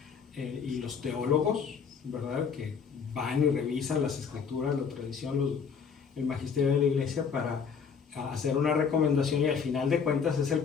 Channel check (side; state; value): right; quieter; 6.2 dB